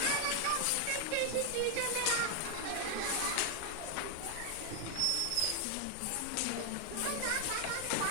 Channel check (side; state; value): both; different; correlation 0.00